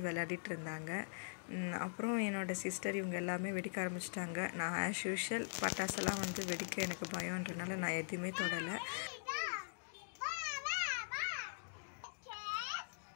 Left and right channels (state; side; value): silent; right; digital silence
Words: விளையாடிட்டு இருந்தாங்க. அப்புறம் என்னோடய சிஸ்டர் இவங்க எல்லாமே வெடிக்க ஆரம்பிச்சிட்டாங்க. நான் ஆஸ் யூஷுவல் பட்டாசெல்லாம் வெடிக்க எனக்கு பயம்ன்றனால நான் எதுவுமே தொடலை.